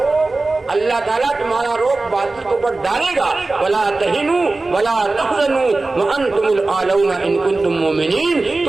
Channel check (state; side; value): quieter; left; 3.3 dB